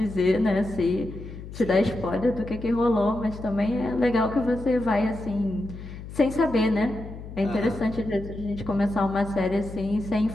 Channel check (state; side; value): noise; left; hum, 12 dB below the sound